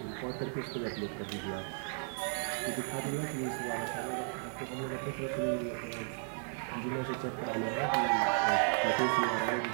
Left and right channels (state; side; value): silent; left; 55 dB below the other